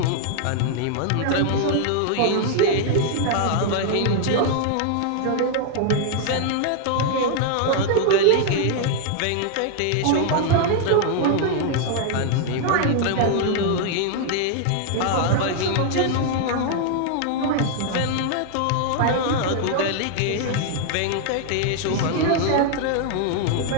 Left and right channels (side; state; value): both; different; correlation 0.00